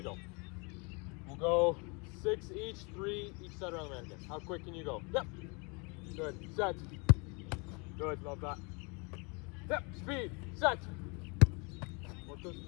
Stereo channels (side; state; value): right; quieter; 31.1 dB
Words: go. We'll go 6 each, 3 each side around the mannequin. How quick can you go? Yep. Good. Set. Good. Love that. Yep. Speed. Set. Work those